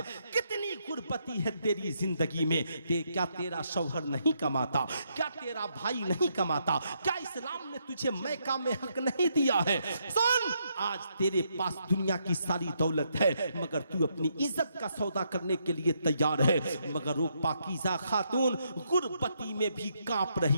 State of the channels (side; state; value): both; inverted; correlation -0.77